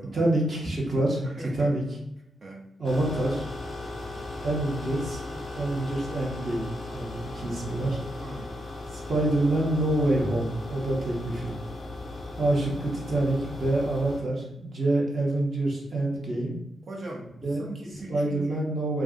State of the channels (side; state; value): both; normal; correlation 0.83